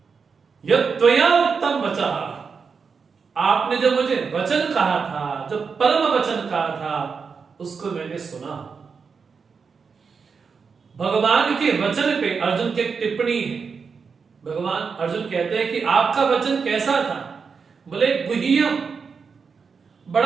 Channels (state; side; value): quieter; left; 5.5 dB